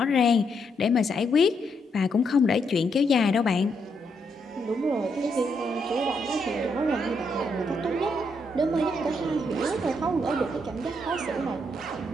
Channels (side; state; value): both; normal; correlation 0.77